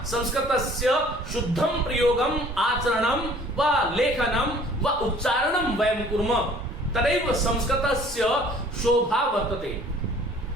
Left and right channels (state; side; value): normal; both; correlation 0.53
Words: संस्कृतस्य शुद्धं प्रयोगम आचरणम व लेखनम व उच्चारणम वयं कुर्मः, तदैव संस्कृतस्य शोभा वर्तते।